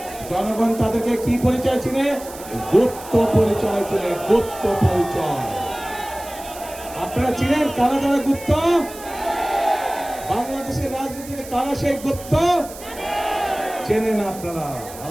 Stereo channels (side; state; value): right; noise; hiss, 16 dB below the sound